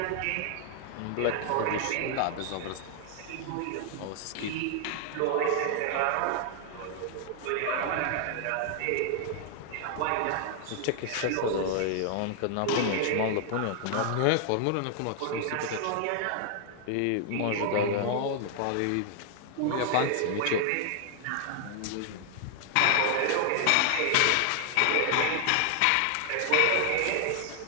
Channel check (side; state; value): both; different; correlation 0.00